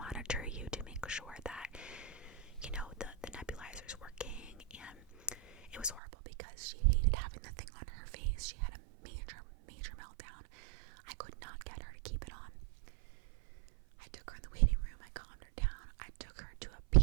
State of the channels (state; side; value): drops out; left; at 6.0 s